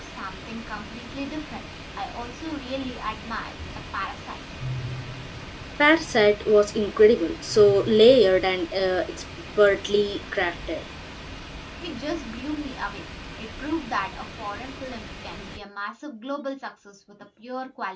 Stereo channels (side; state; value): both; identical; correlation 1.00